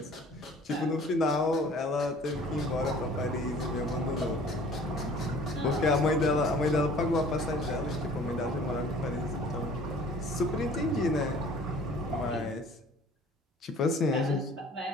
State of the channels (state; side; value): normal; both; correlation 0.50